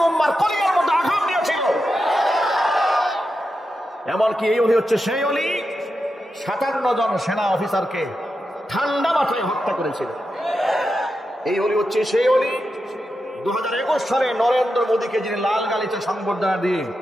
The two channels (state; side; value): normal; both; correlation 0.88